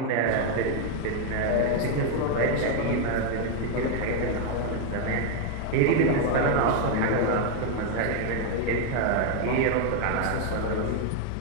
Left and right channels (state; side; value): different; both; correlation 0.01